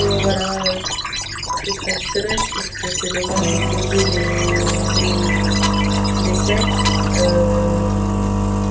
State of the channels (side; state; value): both; identical; correlation 1.00